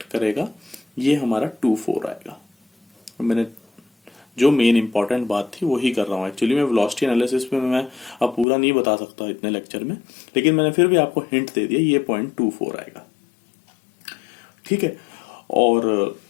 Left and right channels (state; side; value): drops out; right; at 8.5 s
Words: करेगा ये हमारा 2 4 आएगा। मैंने जो मेन इंपॉर्टेंट बात थी वही कर रहा हूँ। एक्चुअली मैं वेलोसिटी एनालिसिस में मैं अब पूरा नहीं बता सकता इतने लेक्चर में, लेकिन मैंने फिर भी आपको हिंट दे दिया, ये पॉइंट 2 4 आएगा, ठीक है। और